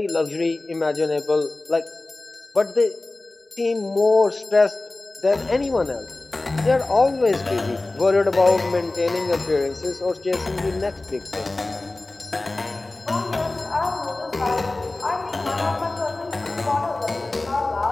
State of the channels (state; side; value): quieter; right; 3.0 dB